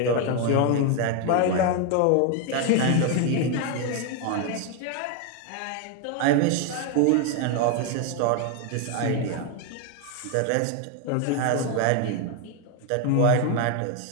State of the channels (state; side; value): different; both; correlation 0.01